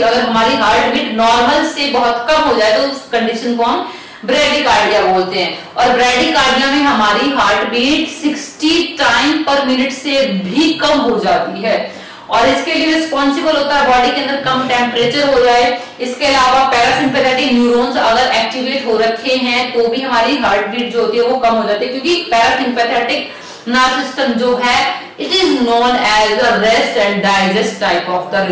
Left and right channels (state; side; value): identical; both; correlation 1.00